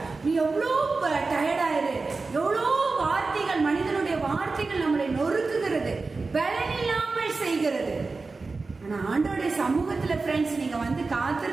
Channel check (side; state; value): left; quieter; 3.9 dB